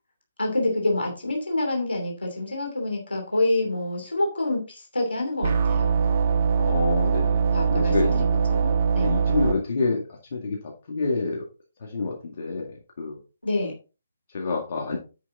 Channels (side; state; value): both; inverted; correlation -0.82